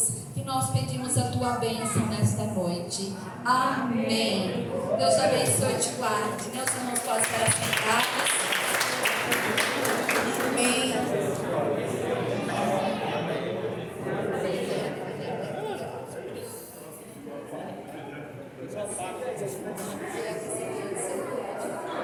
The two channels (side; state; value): both; identical; correlation 1.00